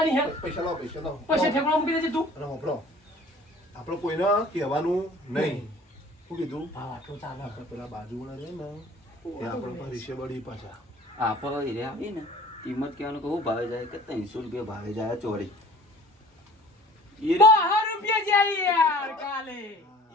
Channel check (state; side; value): normal; both; correlation 0.49